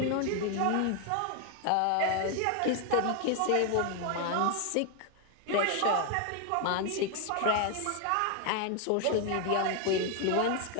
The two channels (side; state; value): both; different; correlation 0.01